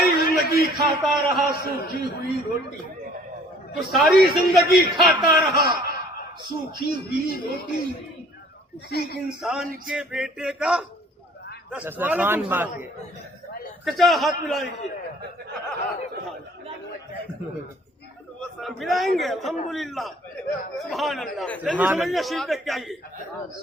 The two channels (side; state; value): both; normal; correlation 0.55